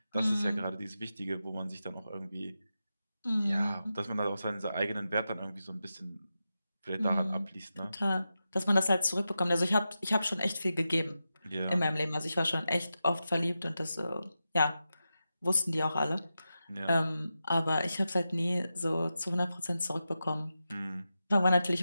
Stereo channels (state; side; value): inverted; both; correlation -0.91